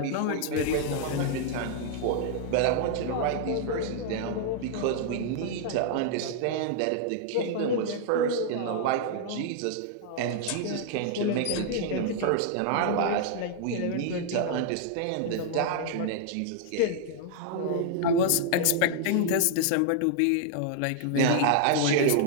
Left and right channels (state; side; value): different; both; correlation -0.01